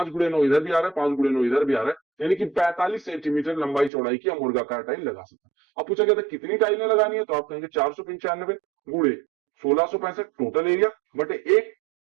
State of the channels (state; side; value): drops out; left; at 3.9 s